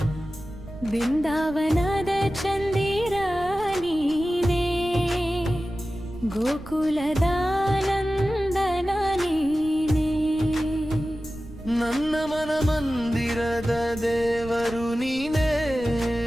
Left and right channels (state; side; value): noise; right; rumble, 16 dB below the sound